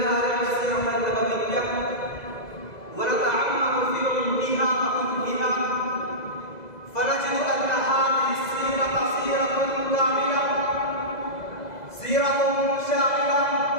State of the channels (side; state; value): right; late; 2.0 ms